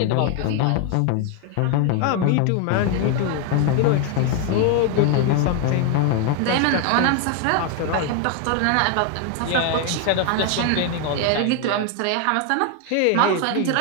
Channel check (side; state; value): both; different; correlation 0.01